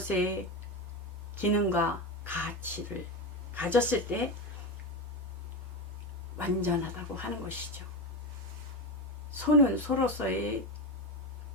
기능과 가치를 가졌을 때 완전하다고 하는 것이죠. 소는 소로서의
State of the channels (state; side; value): normal; both; correlation 0.17